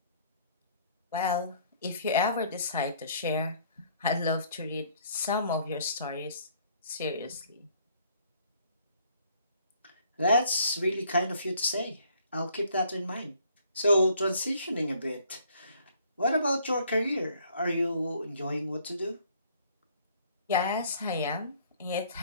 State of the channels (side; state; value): both; inverted; correlation -0.61